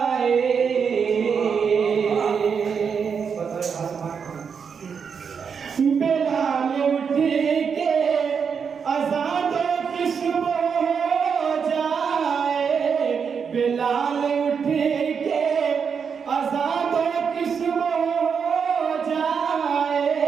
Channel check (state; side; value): quieter; left; 6.4 dB